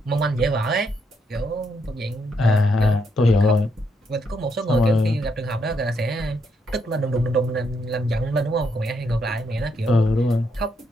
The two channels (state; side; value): normal; both; correlation 0.77